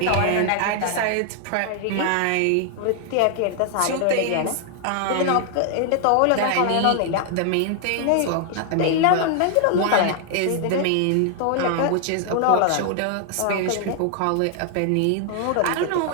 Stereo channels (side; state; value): both; different; correlation 0.00